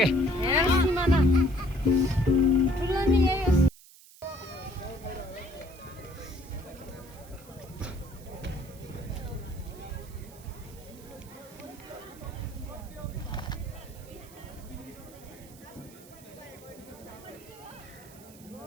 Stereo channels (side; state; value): right; noise; hiss, 21 dB below the sound